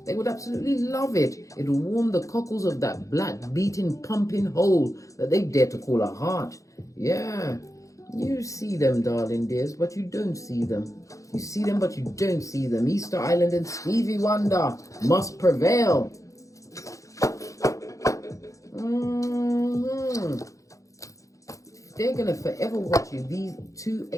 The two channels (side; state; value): right; late; 0.16 ms